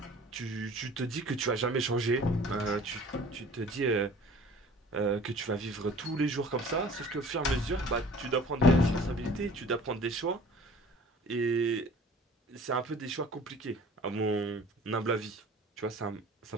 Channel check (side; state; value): both; normal; correlation 0.47